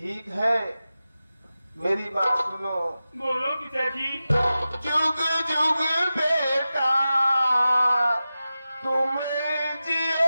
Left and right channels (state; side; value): inverted; both; correlation -0.94